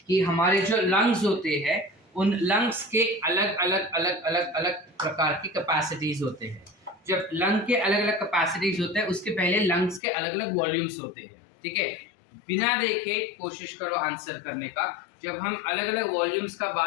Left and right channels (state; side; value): drops out; right; at 10.0 s